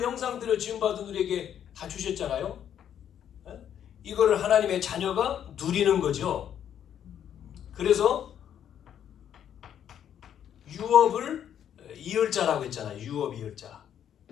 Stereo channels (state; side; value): quieter; right; 9.6 dB